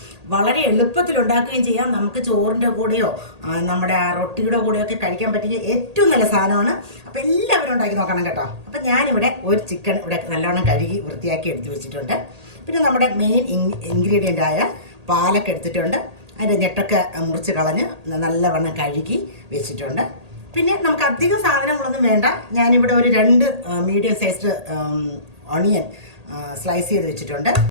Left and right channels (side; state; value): left; late; 1.8 ms